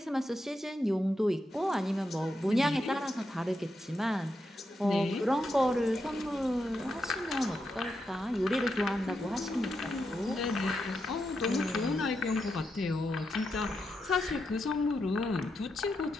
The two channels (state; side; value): normal; both; correlation 0.85